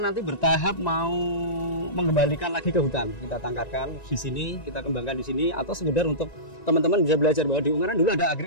nanti bertahap mau mengembalikan lagi ke hutan. Kita tangkarkan di sini, kita kembangkan di sini, atau sekedar untuk teman-teman bisa belajar bahwa di Ungaran dulu ada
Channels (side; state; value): right; late; 1.9 ms